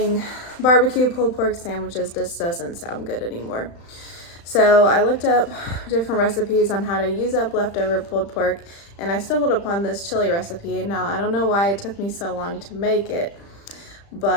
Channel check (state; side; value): late; right; 35 ms